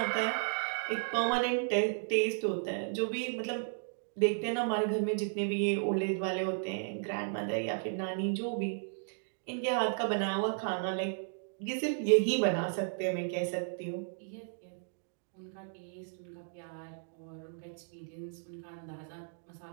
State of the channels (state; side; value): silent; left; digital silence